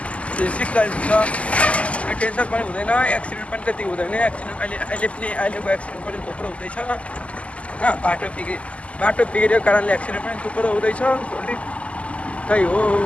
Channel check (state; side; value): late; right; 0.064 ms